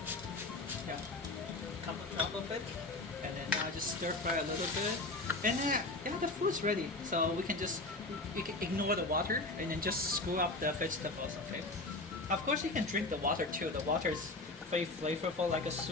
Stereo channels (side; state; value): right; quieter; 3.0 dB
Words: Yeah, a couple drop of it. And then now just stir fry a little bit. And then, yeah, the food's ready. So we can just, you can ignore the water and then just screw up the vegetables, okay? Of course you can drink the water too. The water is very flavorful like a